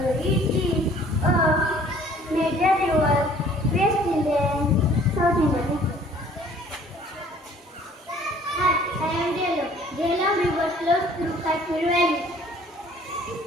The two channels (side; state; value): both; normal; correlation 0.55